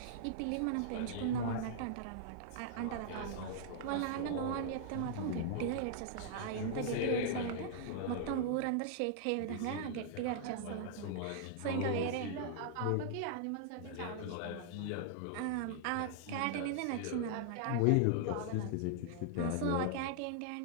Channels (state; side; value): different; both; correlation -0.01